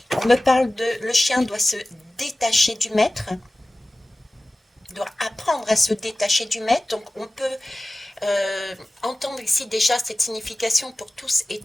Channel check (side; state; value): both; normal; correlation 0.97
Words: On me parle de le chien doit se détacher du maître, doit apprendre à se détacher du maître. Donc on peut entendre ici déjà cette signification pour tous et